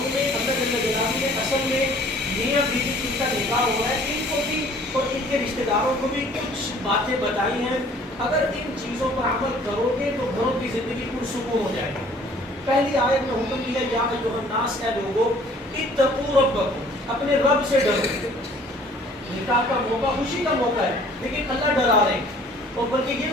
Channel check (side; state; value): both; normal; correlation 0.54